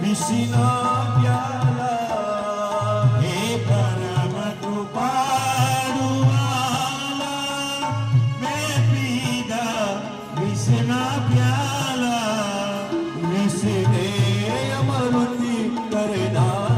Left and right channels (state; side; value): identical; both; correlation 1.00